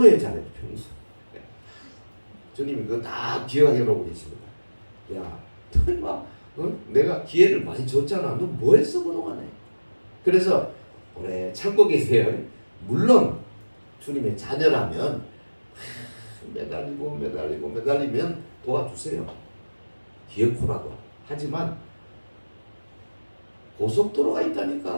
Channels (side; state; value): both; inverted; correlation -1.00